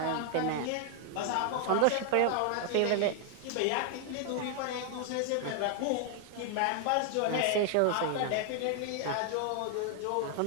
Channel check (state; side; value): different; both; correlation 0.00